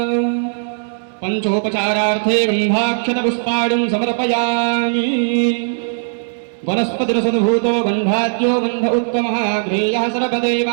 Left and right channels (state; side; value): silent; left; digital silence